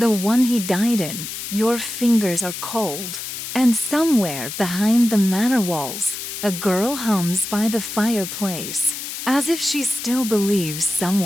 one he died in. Your fingers are cold, and somewhere behind the manor walls, a girl hums by the fireplace, as if she still believes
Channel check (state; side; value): noise; left; hiss, 7 dB below the sound